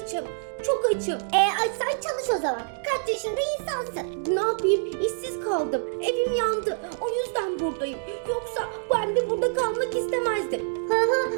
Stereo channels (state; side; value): silent; left; digital silence